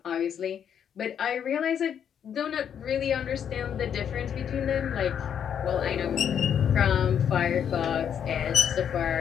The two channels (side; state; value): right; quieter; 8.5 dB